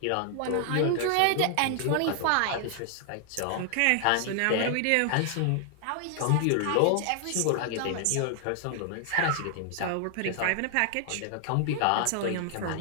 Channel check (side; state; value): both; different; correlation 0.00